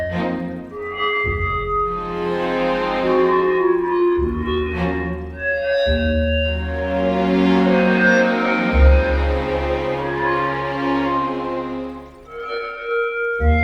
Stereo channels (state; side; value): identical; both; correlation 1.00